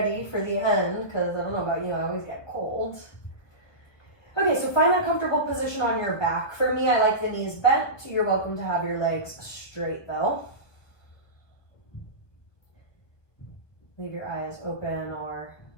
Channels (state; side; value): late; right; 1.3 ms